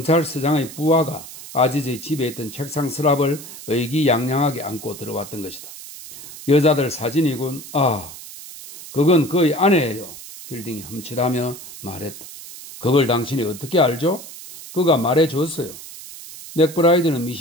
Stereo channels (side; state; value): right; noise; hiss, 14 dB below the sound